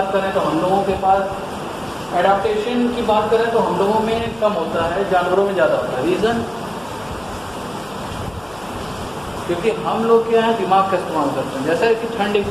करें तो हम लोगों के पास एडाप्टेशन की बात करें तो हम लोगों में कम होता है, जानवरों में ज़्यादा होता है। रीज़न, क्योंकि हम लोग क्या है, दिमाग का इस्तेमाल करते हैं। जैसे कि ठंड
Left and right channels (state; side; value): noise; left; hum, 24 dB below the sound